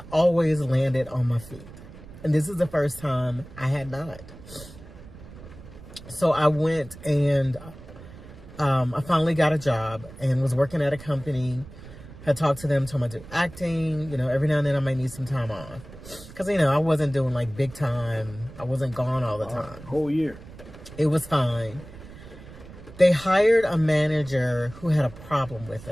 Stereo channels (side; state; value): right; noise; rumble, 17 dB below the sound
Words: always landed on my feet. And this is the first time I had not. So I went and I finally got a job and was working at a company. Had talked to them, told them I do acting. You know, every now and then I might need some time off. Because, you know, I wasn't doing like big time. I wasn't gone all the time. Whole year. It was fine. They hired a manager who had a problem with